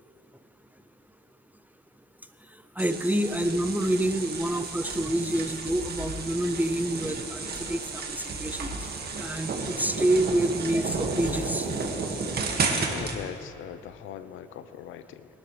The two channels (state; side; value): normal; both; correlation 0.67